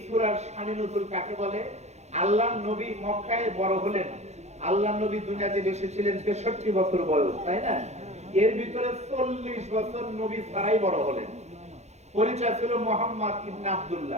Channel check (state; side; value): late; left; 0.32 ms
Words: সূরার শানে নজুল কাকে বলে? আল্লাহর নবী মক্কায় বড় হলেন। আল্লাহর নবী দুনিয়াতে এসেছিলেন 63 বছর বয়স, তাই না? এর ভিতরে 40 বছর নবী ছাড়াই বড় হলেন। পরিচয় ছিল মুহাম্মদ ইবনে